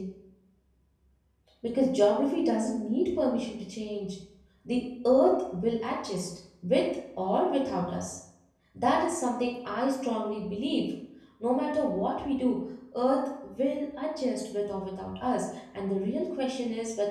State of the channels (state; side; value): identical; both; correlation 1.00